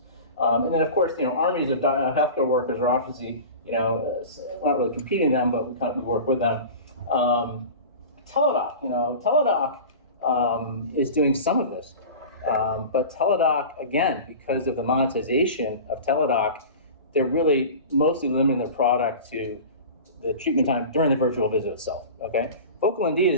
And then of course, armies of healthcare workers are obviously, not really competing them, but we work with them. Teladoc, Teladoc is doing some of this. But Teladoc, again, because of the monetization of Teladoc, they're really mostly limiting their product to the treatment time during the virtual visit itself, okay? VocalMD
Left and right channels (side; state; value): both; inverted; correlation -0.34